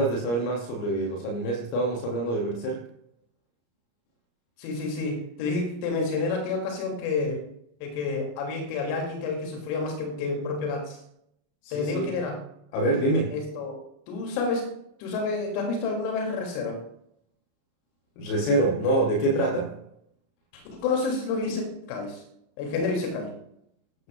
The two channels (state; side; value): late; right; 34 ms